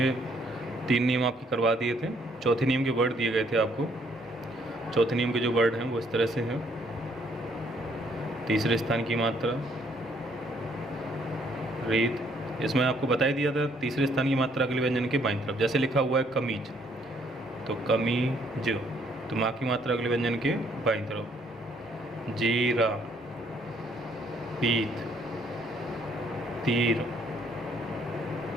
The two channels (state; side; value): normal; both; correlation 0.67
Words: 3 नियम आपके करवा दिए थे। चौथे नियम के वर्ड दिए गए थे आपको। चौथे नियम के जो वर्ड हैं वो इस तरह से हैं। तीसरे स्थान की मात्रा रीत। इसमें आपको बता ही दिया था तीसरे स्थान की मात्रा अगले व्यंजन के बाईं तरफ। जैसे लिखा हुआ है कमीज, तो कमीज, तो माँ की मात्रा अगले व्यंजन के बाईं तरफ। जीरा, पीत, तीर,